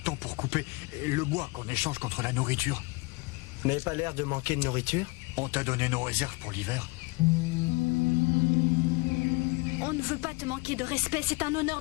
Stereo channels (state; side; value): quieter; right; 26.0 dB